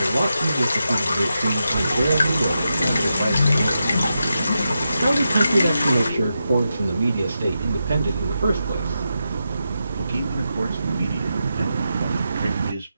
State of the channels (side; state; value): both; inverted; correlation -0.87